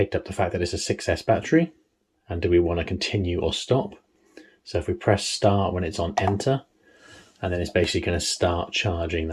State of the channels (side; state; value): both; identical; correlation 1.00